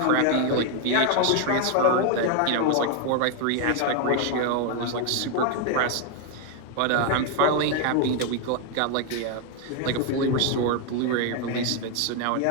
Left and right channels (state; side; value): different; both; correlation 0.01